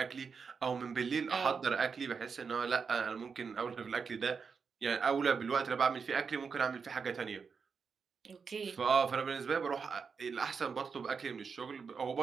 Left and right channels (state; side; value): quieter; left; 5.6 dB